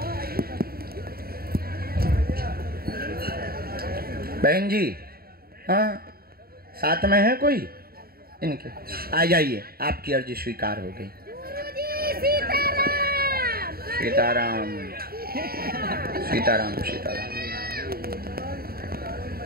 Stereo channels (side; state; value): left; late; 0.44 ms